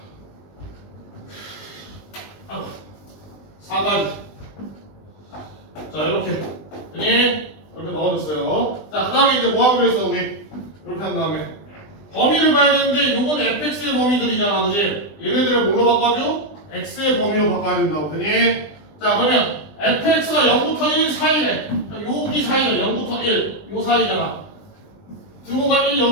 4까지. 자, 이렇게. 되니? 이렇게 넣어줬어요. 자, 그 다음에 이제 뭐 하기로 했어, 우리? 이렇게 한 다음에. 범위를 봐야 되는데, 요건 fx의 범위들이잖아, 그지? 얘네들을 뭘로 바꿔줘? x의 범위로 바꿔야 된다고. 되니? 자, 그러면 fx가 0부터 1 사이래. 여기 사이가 0부터 1. 요 사이잖아. 등호가 1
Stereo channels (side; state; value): right; late; 20 ms